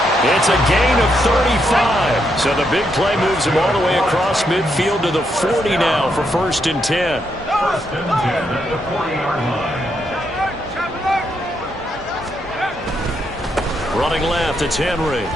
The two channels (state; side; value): normal; both; correlation 0.79